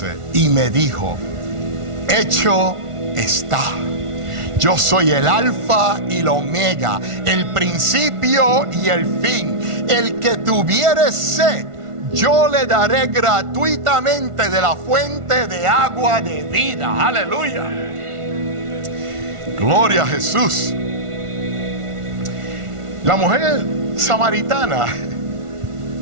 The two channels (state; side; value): late; left; 1.5 ms